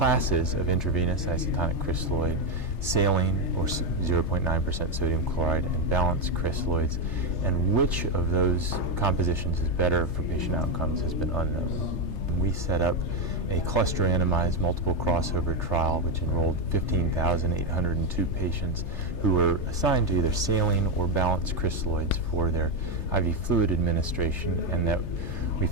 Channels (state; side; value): late; right; 3.3 ms